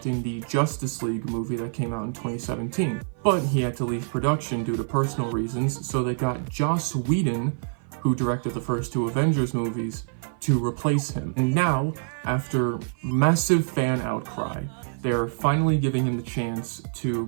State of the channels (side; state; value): left; silent; 55 dB below the other